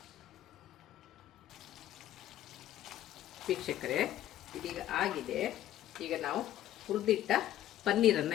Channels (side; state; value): right; quieter; 12.7 dB